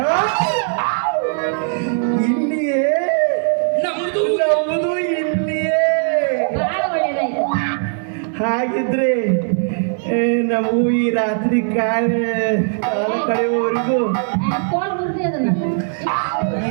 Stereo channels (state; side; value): silent; left; digital silence